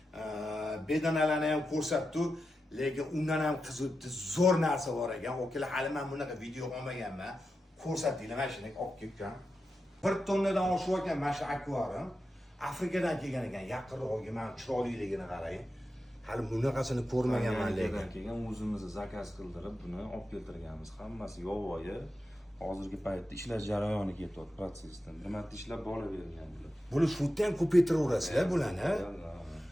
bedanalarni ham ko'rsatdim. Lekin undan ham qiziqdi zo'r narsa bor ekan. O'kalar hali men bunaqa video olmaganman. Ko'rsatdinglar mana shuni olib kelgan. 1 tonnadan oshib ekan mana shu akvarium. Afrikadan kelgan ekan. Yaqinroqga men chiroyliligini qarang. Hali bunaqasini ko'rmaganman lekin. Keyin o'zimiz zakaz qildirib buni olib keltirganmiz. Hammasi yovvoyi. Hozirgi paytda ishlar jarayoni ketyapti protsessdan. Bir marta ishlab bolavergan bular. Buni shutda ham ko'paytiraverasizlar bularni.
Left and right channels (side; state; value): both; normal; correlation 0.90